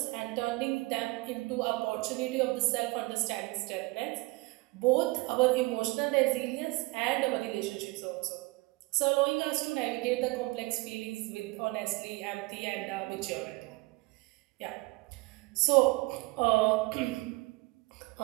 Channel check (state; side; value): quieter; left; 23.7 dB